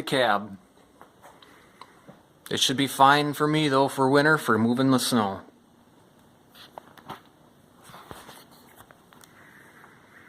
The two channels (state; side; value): identical; both; correlation 1.00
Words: cab. It should be fine for me though for winter for moving the snow.